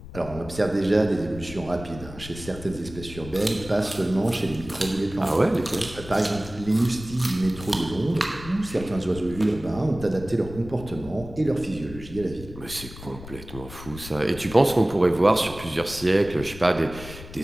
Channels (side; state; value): left; noise; rumble, 14 dB below the sound